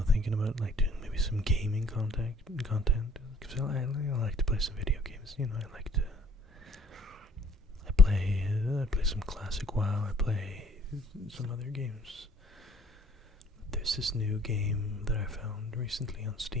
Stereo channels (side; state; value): both; normal; correlation 0.57